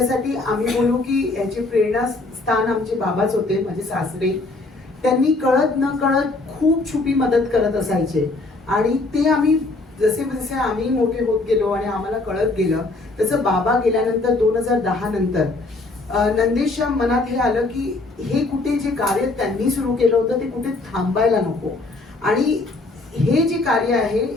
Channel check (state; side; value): quieter; right; 3.2 dB